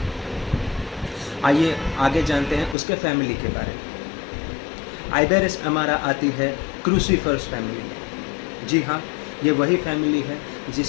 आइए आगे जानते हैं उसके फैमिली के बारे में। आइबेरिस अमारा आती है क्रूसीफरस फैमिली में। जी हाँ, ये वही फैमिली है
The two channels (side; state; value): right; drops out; at 2.8 s